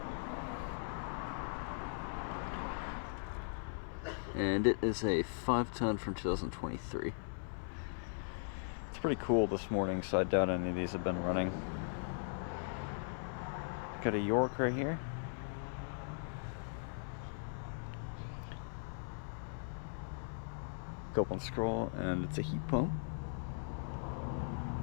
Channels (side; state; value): right; silent; 52 dB below the other